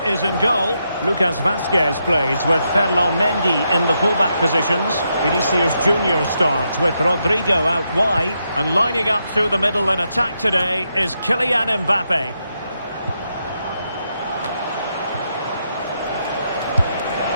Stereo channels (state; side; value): inverted; both; correlation -0.82